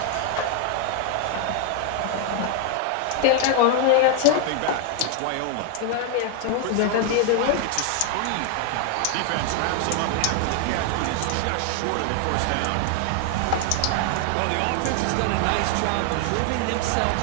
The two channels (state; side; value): different; both; correlation 0.00